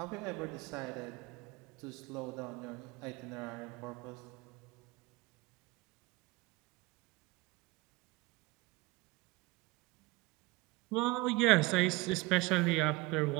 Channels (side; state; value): left; quieter; 21.8 dB